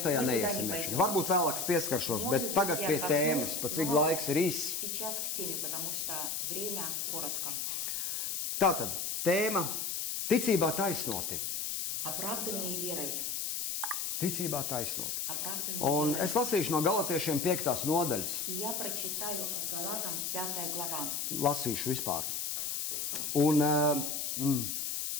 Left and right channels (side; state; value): left; noise; hiss, 2 dB below the sound